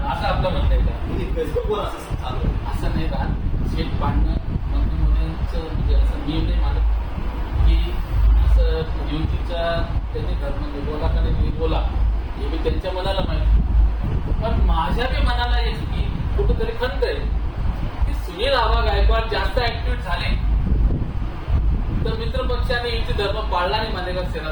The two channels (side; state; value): both; identical; correlation 1.00